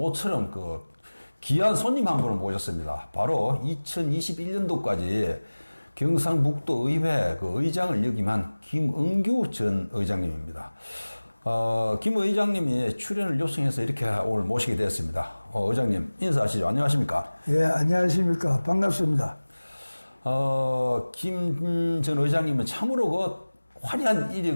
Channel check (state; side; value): inverted; both; correlation -1.00